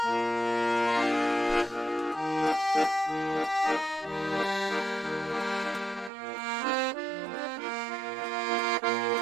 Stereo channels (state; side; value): drops out; left; at 6.1 s